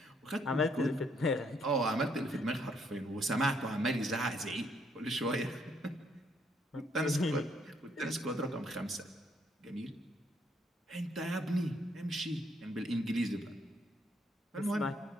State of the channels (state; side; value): normal; both; correlation 0.70